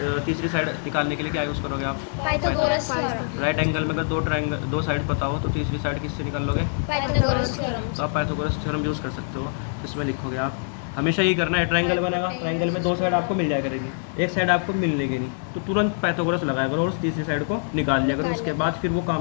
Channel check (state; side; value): silent; right; digital silence